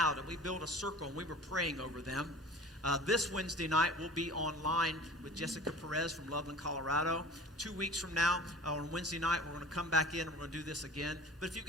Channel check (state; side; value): normal; both; correlation 0.41